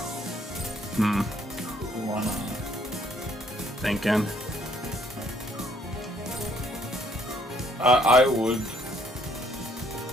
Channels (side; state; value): both; normal; correlation 0.66